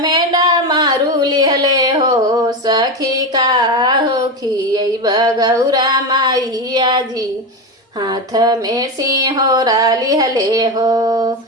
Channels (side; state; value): both; normal; correlation 0.17